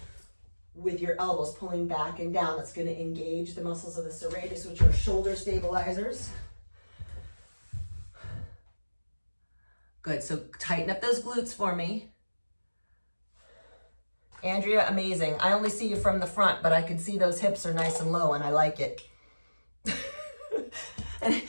with your elbows, pulling back and down. That's going to engage the muscles of the serratus, which are shoulder stabilizers. Good, so tighten up those glutes for me. Andrea, amazing. I only see you from the front, but I can see those hips are nice and low and I like it.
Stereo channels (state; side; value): inverted; both; correlation -1.00